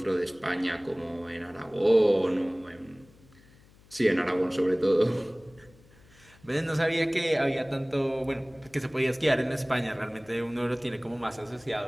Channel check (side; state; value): left; noise; hum, 27 dB below the sound